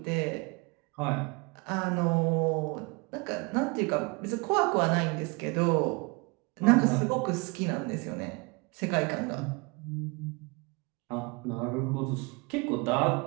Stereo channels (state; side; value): quieter; left; 28.8 dB